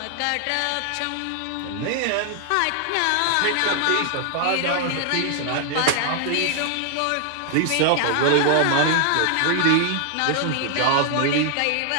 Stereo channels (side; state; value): both; different; correlation 0.00